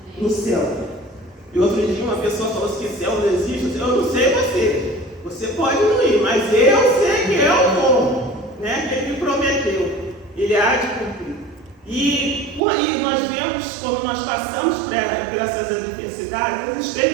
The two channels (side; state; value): left; drops out; at 12.6 s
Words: no céu. E outro dia uma pessoa falou assim, que céu não existe. Eu não sei você pode não ir, mas eu sei que eu vou, né? Que Ele me prometeu, Ele há de cumprir. E nós vemos, quando nós passamos por essas adversidades, as